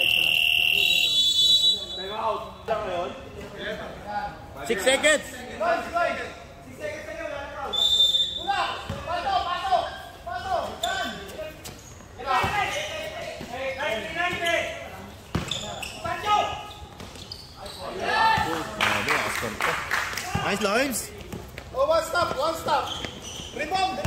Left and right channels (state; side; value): identical; both; correlation 1.00